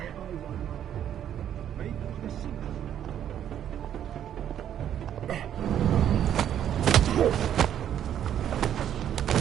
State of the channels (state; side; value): quieter; left; 10.1 dB